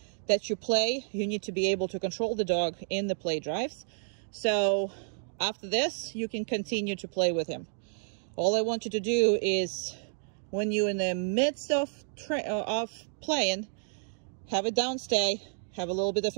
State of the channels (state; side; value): silent; left; digital silence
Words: that you play, you need to be able to control the dog in the play drives. So after this, you can continue to play with him. All I want you to do is, when you're in the midst of playing, have a downstay, have a little bit of